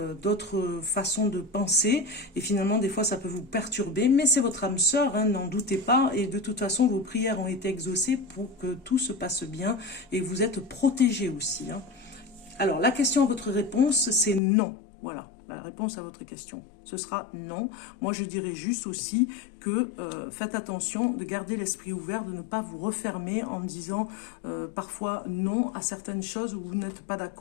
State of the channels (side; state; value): right; drops out; at 14.4 s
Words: d'autres façons de penser et finalement, des fois, ça peut vous perturber, mais c'est votre âme sœur, hein, n'en doutez pas, et de toute façon, vos prières ont été exaucées pour que tout se passe bien, et vous êtes protégés aussi. Hein. Alors, la question à votre réponse, c'est non. Voilà, la réponse à votre question, ce sera non. Moi, je dirais juste aussi que faites attention de garder l'esprit ouvert, de ne pas vous refermer en disant parfois non à certaines choses où vous n'êtes pas